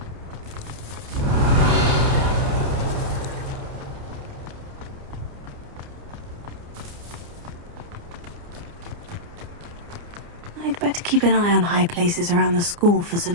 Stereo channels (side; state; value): left; late; 29 ms